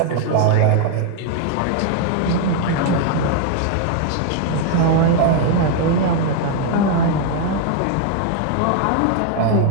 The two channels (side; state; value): both; different; correlation 0.00